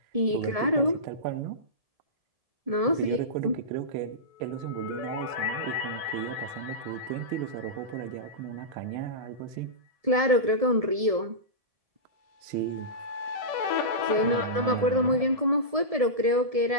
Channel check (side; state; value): left; late; 1.7 ms